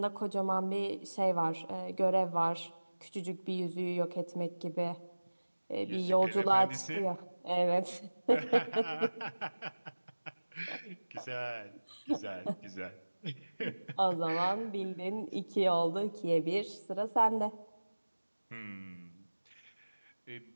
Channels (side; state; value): both; inverted; correlation -1.00